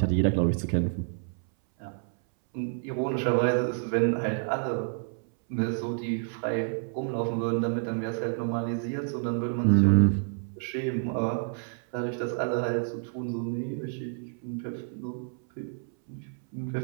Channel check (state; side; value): silent; left; 59 dB below the other